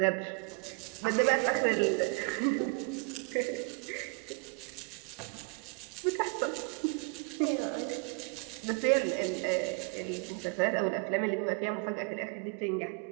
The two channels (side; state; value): left; quieter; 34.4 dB